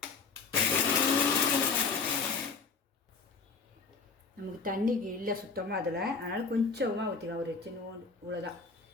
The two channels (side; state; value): right; quieter; 4.8 dB